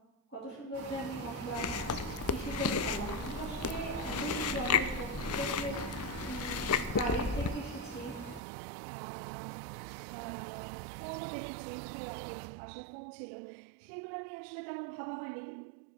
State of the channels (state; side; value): drops out; left; at 8.4 s